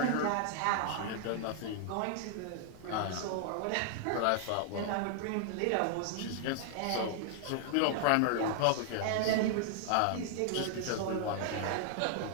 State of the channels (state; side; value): different; both; correlation -0.01